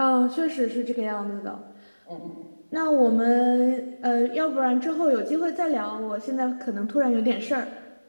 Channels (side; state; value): both; inverted; correlation -1.00